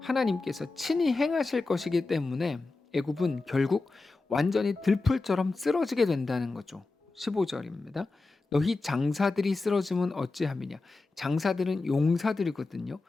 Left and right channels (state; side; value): quieter; right; 3.6 dB